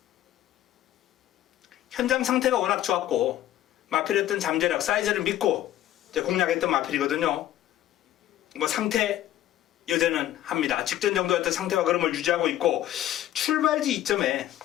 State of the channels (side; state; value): right; quieter; 13.0 dB